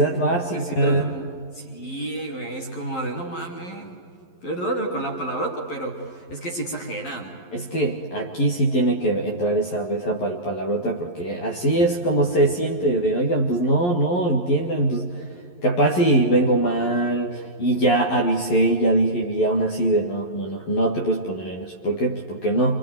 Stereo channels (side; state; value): right; late; 11 ms